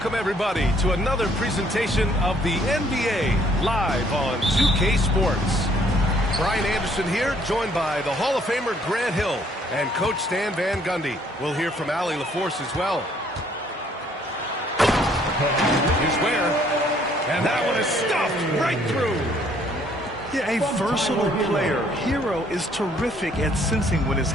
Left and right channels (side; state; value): both; normal; correlation 0.64